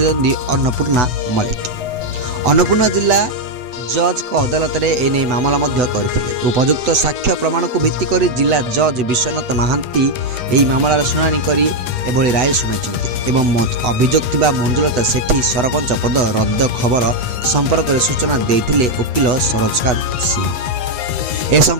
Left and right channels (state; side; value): late; left; 8.0 ms